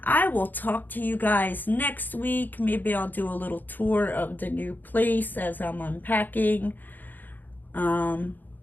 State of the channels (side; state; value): right; late; 0.087 ms